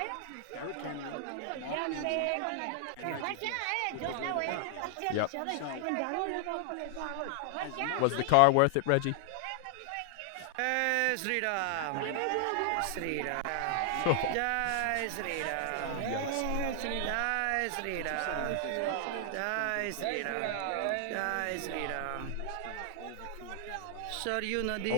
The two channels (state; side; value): different; both; correlation 0.00